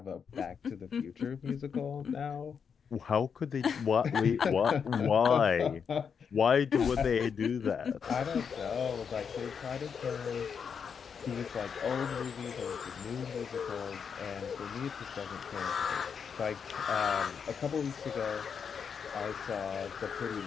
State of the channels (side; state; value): right; quieter; 6.7 dB